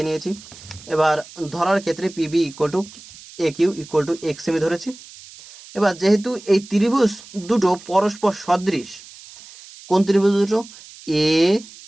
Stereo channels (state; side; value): noise; right; hiss, 19 dB below the sound